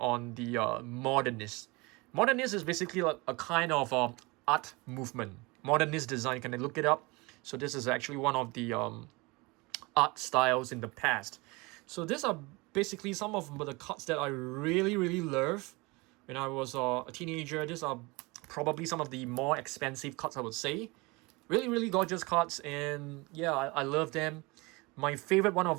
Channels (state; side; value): quieter; left; 25.2 dB